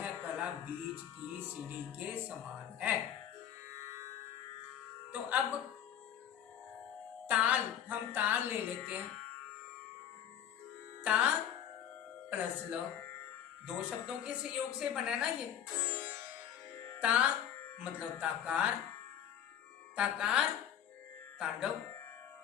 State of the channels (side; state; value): right; quieter; 9.8 dB